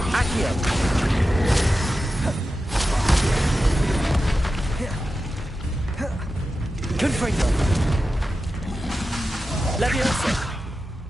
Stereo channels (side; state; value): both; normal; correlation 0.92